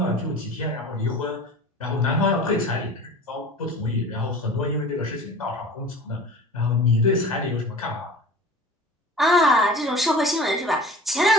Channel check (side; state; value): both; normal; correlation 0.40